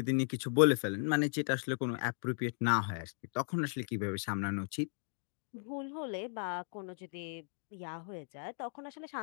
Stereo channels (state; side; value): silent; right; 54 dB below the other